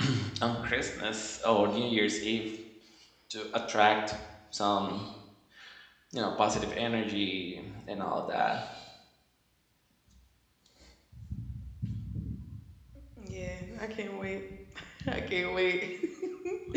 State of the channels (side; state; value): both; identical; correlation 1.00